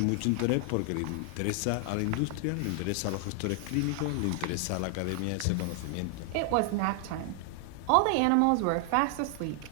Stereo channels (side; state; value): both; different; correlation 0.00